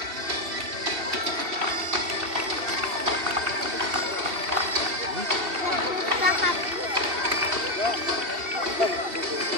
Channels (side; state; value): left; late; 2.7 ms